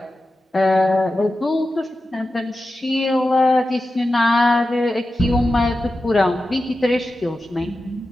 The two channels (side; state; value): both; normal; correlation 0.92